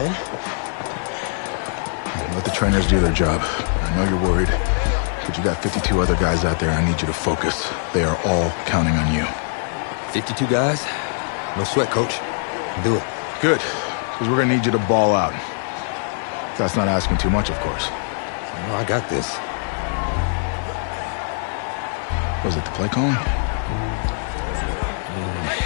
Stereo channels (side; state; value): right; silent; 58 dB below the other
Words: Let the trainers do their job. I know you're worried, but you got 52 other guys out there. I need you to focus. They are all counting on you. 52 guys? No sweat, Coach. Do it. Good, because we're gonna need you to ball out. That's not asking too much, of course. No, I got this. Was it the play calling?